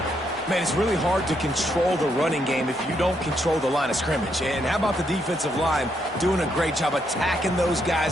Man, it's really hard to control the running game if you don't control the line of scrimmage. And how about the defensive line doing a great job attacking those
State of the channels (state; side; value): normal; both; correlation 0.77